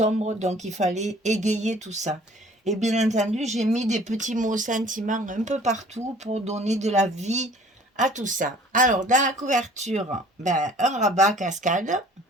donc il fallait égayer tout ça. Et bien entendu, j'ai mis des petits mots sentiments un peu partout pour donner de la vie à tout ça. Alors, dans la couverture, ben, un rabat cascade,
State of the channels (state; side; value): normal; both; correlation 0.51